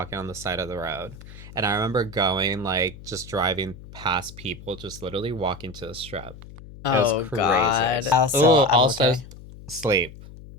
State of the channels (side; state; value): left; noise; hum, 17 dB below the sound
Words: on the side of the road. And I remember going like just driving past people, just literally walking to the strip. It was Oh crazy. God. Also, Oh, I'm also okay. sleep.